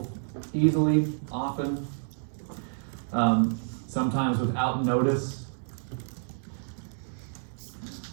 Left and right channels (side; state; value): left; silent; digital silence